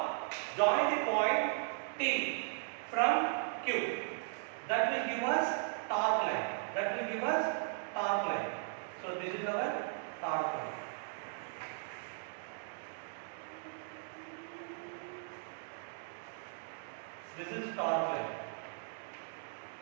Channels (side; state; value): left; silent; digital silence